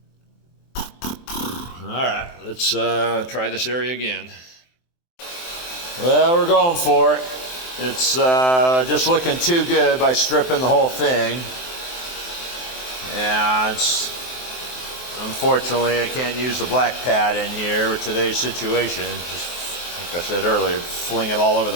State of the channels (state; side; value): late; right; 23 ms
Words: All right, let's try this area again. Well, we're going for it. It's just looking too good by stripping the whole thing. And unfortunately, I can't use the black pad in here with today's situation. Just like I said earlier, fling it all over the